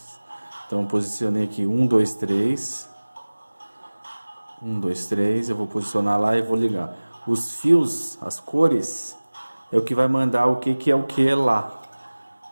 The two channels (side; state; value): both; inverted; correlation -1.00